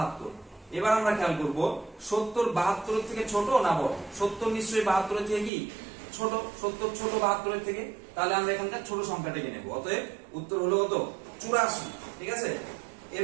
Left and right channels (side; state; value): left; drops out; at 5.5 s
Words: এবার আমরা খেয়াল করব 70 72 এর থেকে ছোট না বড়? 70 নিশ্চয়ই 72 এর থেকে কি ছোট। 70 ছোট 72 এর থেকে, তাহলে আমরা এখানকার ছোট সংখ্যাটাকে নেব। অতএব উত্তর হলো কত? 84। ঠিক আছে।